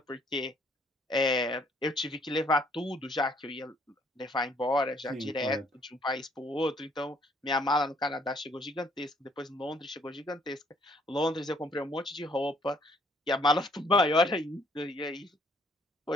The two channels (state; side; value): normal; both; correlation 0.65